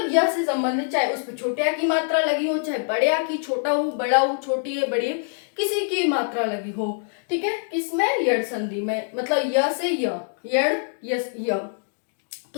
य से संबंधित, चाहे उस पर छोटे आ की मात्रा लगी हो, चाहे बड़े आ की, छोटा हो बड़ा हो, छोटी है बड़ी है, किसी की मात्रा लगी हो। ठीक है, किसमें, यड़ संधि में, मतलब य से य, यड़ यस य,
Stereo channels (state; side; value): silent; right; digital silence